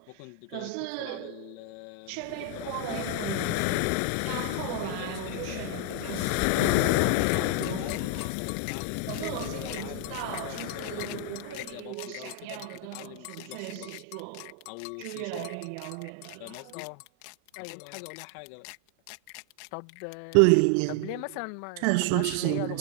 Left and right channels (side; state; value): both; different; correlation 0.00